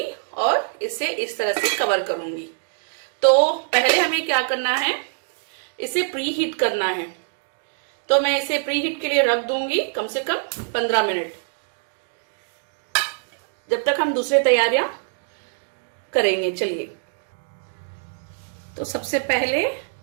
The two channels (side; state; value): left; silent; 63 dB below the other